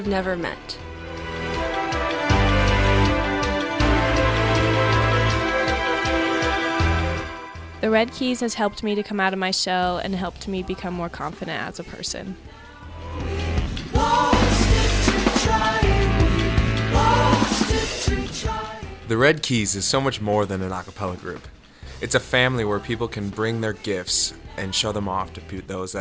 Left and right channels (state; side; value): identical; both; correlation 1.00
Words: never met. The Red Keys has helped me to come out of my shell and helped me become more confident as a person. The Red Keys is so much more than an a cappella group. It's a family where people can bring their gifts and show them off to those